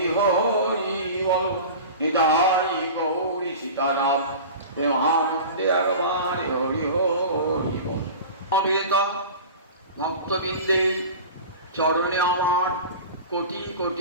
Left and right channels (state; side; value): inverted; both; correlation -0.34